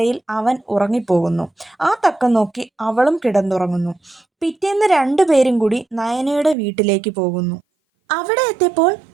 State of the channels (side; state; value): left; drops out; at 6.6 s